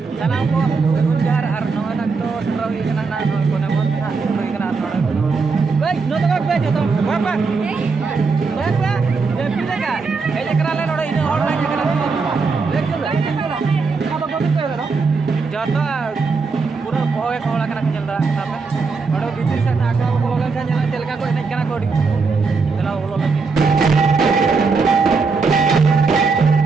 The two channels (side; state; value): left; quieter; 4.6 dB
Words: sana ko gunjar arno anak to setrawi kana na kone bot ha setrawi kana arno baik no to baik to bapak bapak ya pilega ele kerale noda ini online kana apa ko to no jata pura boy kola kana nyelda sape odo bitir sa na ka bologan sa nyala telka ko enek kana ko di tela bologan